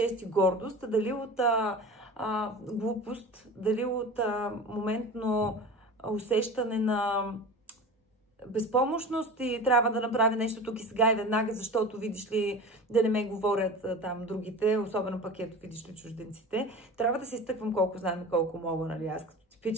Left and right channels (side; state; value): both; normal; correlation 0.34